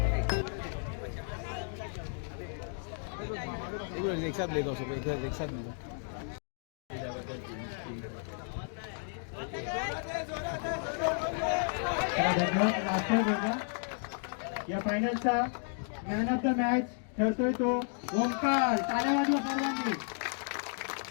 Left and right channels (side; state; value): right; silent; 56 dB below the other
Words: एक साथ ले दो सब एक साथ ले दो। या फायनलचा मॅन ऑफ द मॅच ठरतोय तो ओंकार। टाळ्या वाजवा सर्वांनी।